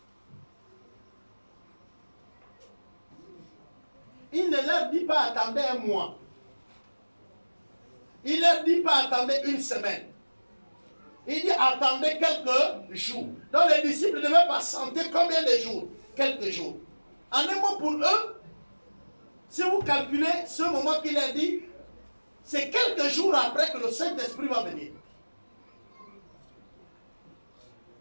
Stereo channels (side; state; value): both; inverted; correlation -1.00